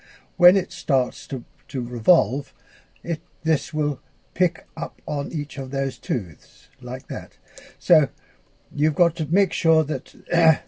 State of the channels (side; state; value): both; identical; correlation 1.00